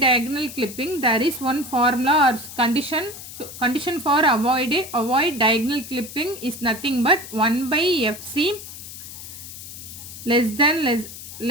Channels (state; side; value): noise; left; hiss, 13 dB below the sound